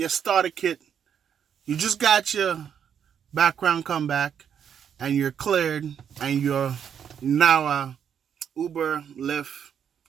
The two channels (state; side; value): quieter; left; 8.2 dB